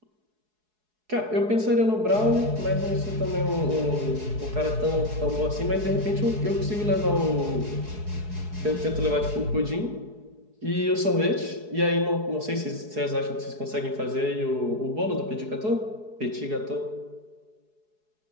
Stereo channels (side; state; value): left; late; 4.7 ms